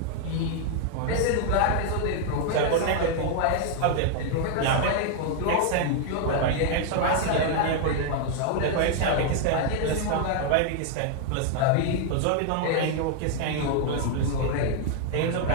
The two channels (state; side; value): different; both; correlation 0.00